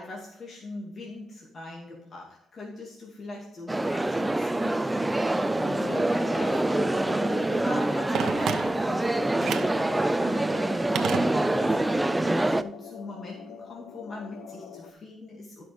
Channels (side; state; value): both; normal; correlation 0.95